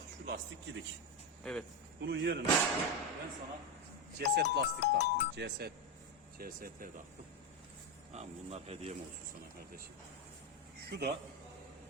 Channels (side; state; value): both; normal; correlation 0.10